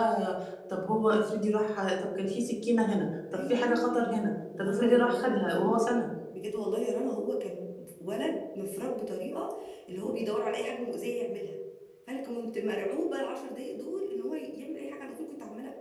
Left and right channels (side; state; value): both; identical; correlation 1.00